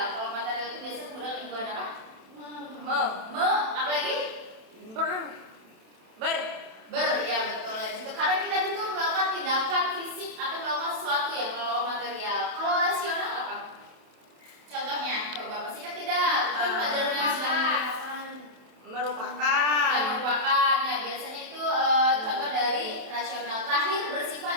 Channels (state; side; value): late; left; 27 ms